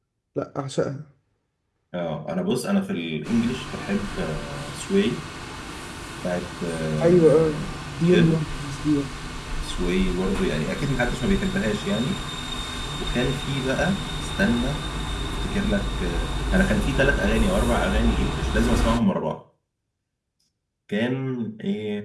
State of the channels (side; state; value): both; identical; correlation 1.00